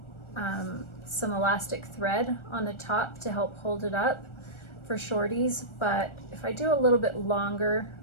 some elastic thread on the top to help hold it up for shorties, but if I do a little bit longer,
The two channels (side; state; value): right; late; 1.4 ms